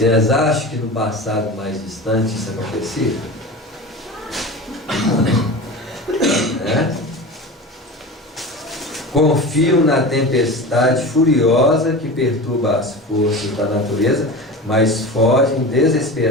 acham que no passado mais distante isso acontecia? Confiam na tempestade furiosa que perturba as forças da natureza, mas fogem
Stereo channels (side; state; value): both; normal; correlation 0.30